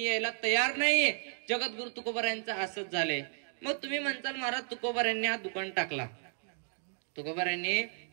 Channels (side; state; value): left; silent; 56 dB below the other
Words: यायला तयार नाहीये. जगद्गुरु तुकोबारायांचं असंच झालंय. मग तुम्ही म्हणताल महाराज तुकोबारायांनी हा दुकान